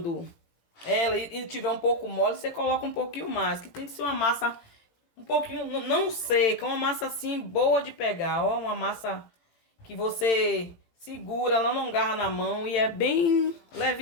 ela e tiver um pouco mole, você coloca um pouquinho mais, que tem que ser uma massa um pouquinho, não seca, uma massa assim boa de pegar, ó, uma massa que você segura, ela não agarra na mão e é bem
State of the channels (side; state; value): right; late; 17 ms